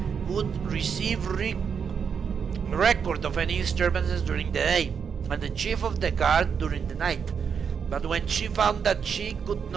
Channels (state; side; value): quieter; left; 6.7 dB